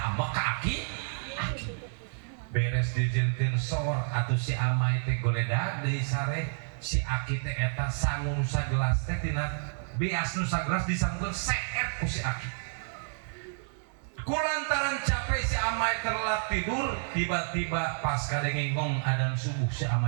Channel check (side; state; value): left; silent; 58 dB below the other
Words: ambek ka aki beres dijieunkeun sor atuh si amai teh goledag deui sare si aki teh eta sangu nu sagelas teh tina beas nu sagelas disangkeun seet ku si aki kulantaran capek si amai terlelap tidur tiba-tiba pas kadengengong adzan subuh si